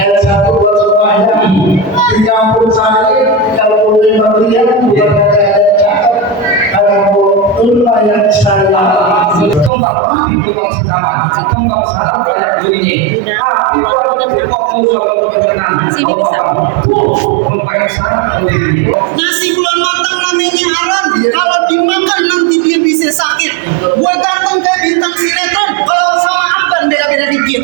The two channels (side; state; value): left; drops out; at 9.7 s